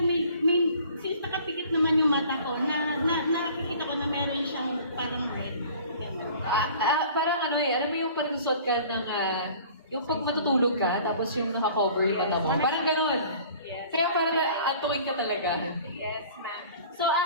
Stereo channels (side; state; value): both; inverted; correlation -0.48